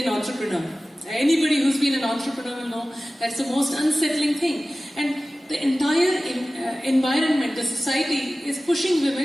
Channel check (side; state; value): both; normal; correlation 0.97